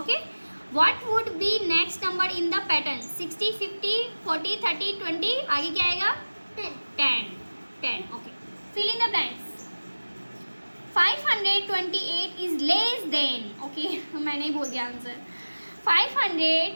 what would be next number in the pattern? 60 50 40 30 20, आगे क्या आएगा? 10। Okay, fill in the blanks. 528 is less than. Okay, मैंने ही बोल दिया आंसर।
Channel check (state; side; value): inverted; both; correlation -1.00